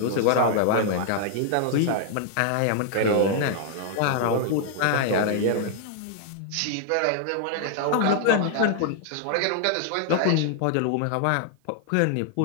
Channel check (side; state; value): both; different; correlation 0.00